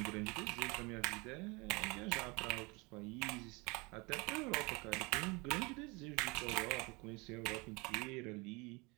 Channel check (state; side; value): quieter; left; 26.9 dB